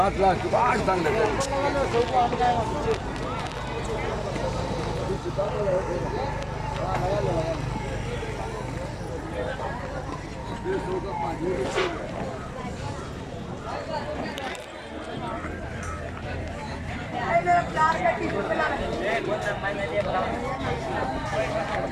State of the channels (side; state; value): both; identical; correlation 1.00